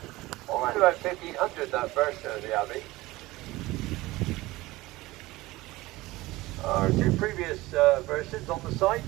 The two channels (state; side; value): quieter; left; 19.3 dB